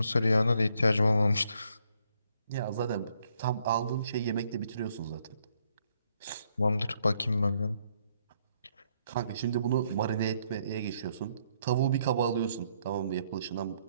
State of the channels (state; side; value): inverted; both; correlation -0.72